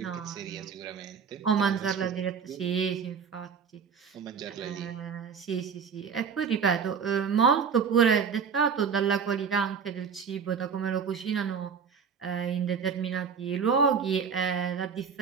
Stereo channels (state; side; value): quieter; left; 6.4 dB